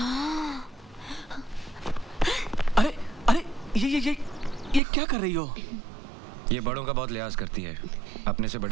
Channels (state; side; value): drops out; left; at 4.8 s